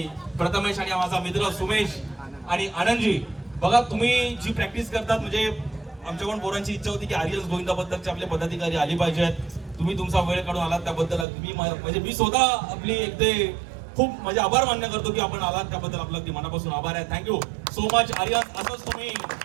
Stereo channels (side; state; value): left; drops out; at 11.2 s